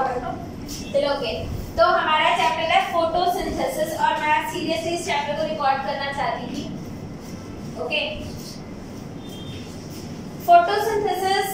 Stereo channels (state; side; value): identical; both; correlation 1.00